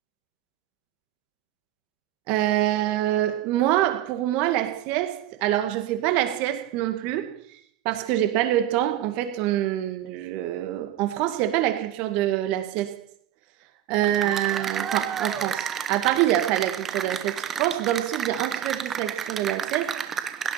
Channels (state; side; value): quieter; left; 12.0 dB